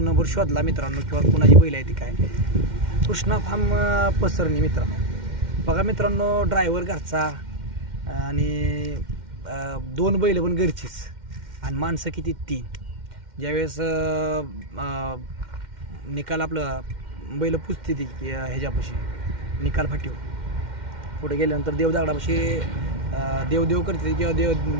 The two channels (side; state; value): left; late; 2.1 ms